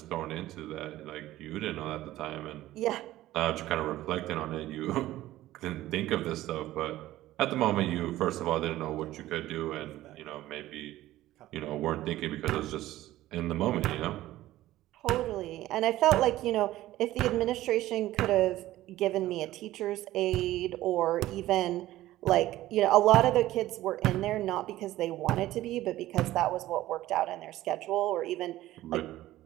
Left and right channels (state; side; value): quieter; left; 15.4 dB